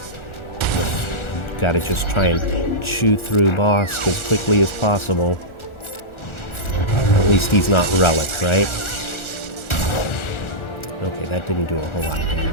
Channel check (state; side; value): late; right; 1.4 ms